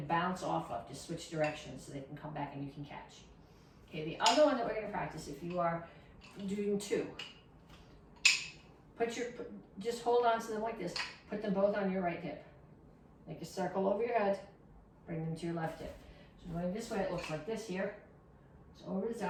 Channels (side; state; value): both; identical; correlation 1.00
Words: off of, to switch directions so they can come back and you can catch. Okay, the other one that we're going to practice, if you are doing 2, just hold on to them like this. Put them both on your right hip. Make a circle over your head. Bring them to your left hip. So going this way, it looks like this here. So over the